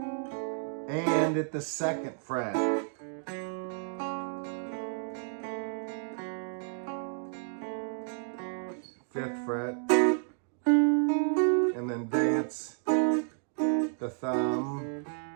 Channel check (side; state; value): left; silent; digital silence